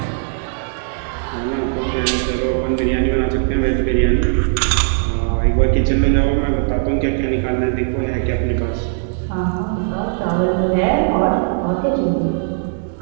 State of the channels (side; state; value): left; silent; digital silence